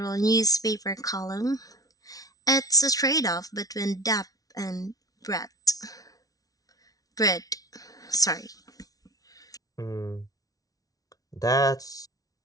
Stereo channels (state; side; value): late; right; 0.18 ms